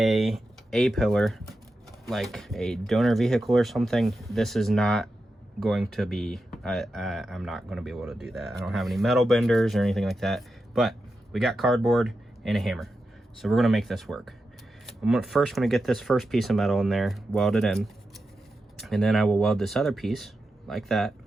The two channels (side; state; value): both; normal; correlation 0.90